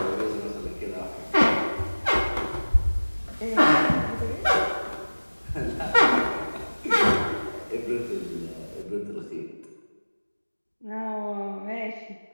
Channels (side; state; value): both; inverted; correlation -1.00